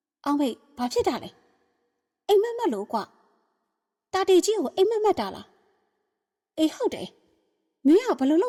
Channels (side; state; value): both; identical; correlation 1.00